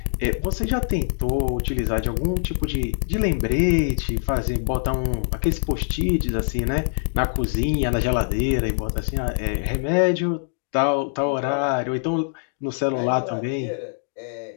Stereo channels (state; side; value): silent; right; digital silence